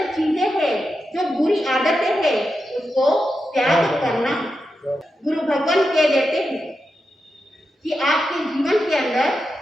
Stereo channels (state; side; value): normal; both; correlation 0.88